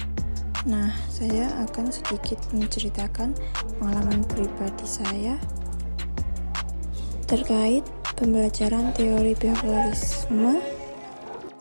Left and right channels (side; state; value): both; inverted; correlation -1.00